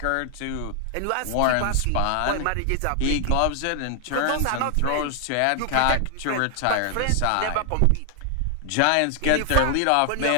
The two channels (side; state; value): both; different; correlation 0.00